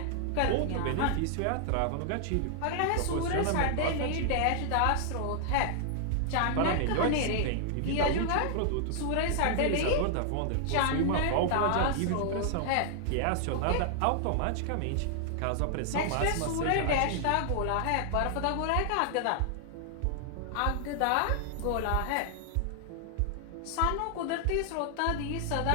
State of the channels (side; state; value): both; different; correlation 0.00